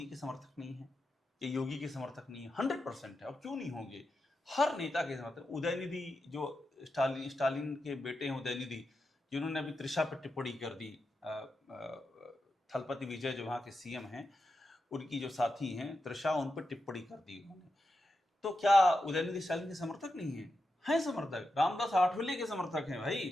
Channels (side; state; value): both; normal; correlation 0.88